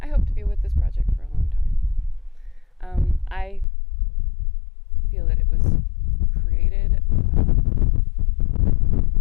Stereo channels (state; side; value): drops out; right; at 3.7 s